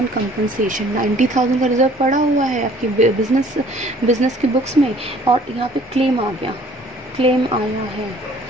compensation, 90,000 का रिजर्व पड़ा हुआ है आपकी बिजनेस की बुक्स में, और यहाँ पे क्लेम आ गया, क्लेम आया है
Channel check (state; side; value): normal; both; correlation 0.55